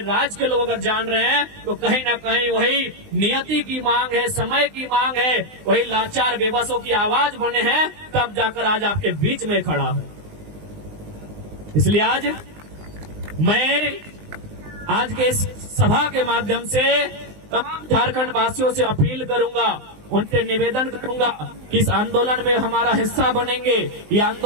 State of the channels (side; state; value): left; late; 19 ms